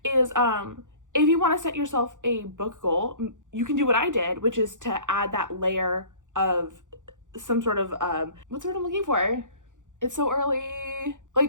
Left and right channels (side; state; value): left; late; 0.87 ms